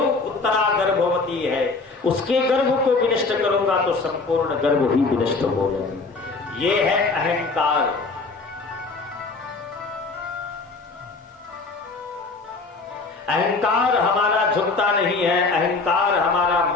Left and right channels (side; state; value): right; quieter; 3.9 dB